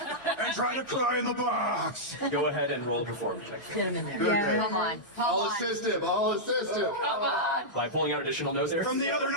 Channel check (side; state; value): both; normal; correlation -0.09